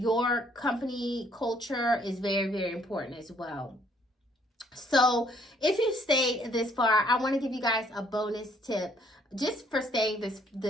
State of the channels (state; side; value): normal; both; correlation 0.64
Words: company culture is very, very important as well. So if you stayed this far, I want to give you guys a bonus tip just for staying